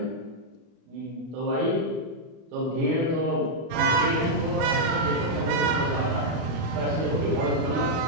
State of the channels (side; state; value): left; late; 25 ms